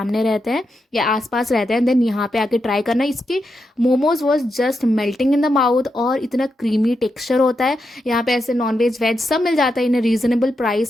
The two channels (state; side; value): normal; both; correlation 0.85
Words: रहते हैं या आसपास रहते हैं, देन यहाँ पे आके ट्राई करना। इसके momos was just melting in the mouth और इतना क्रीमी टेक्सचर होता है। यहाँ पे ऐसे नॉनवेज वेज सब मिल जाता है in a reasonable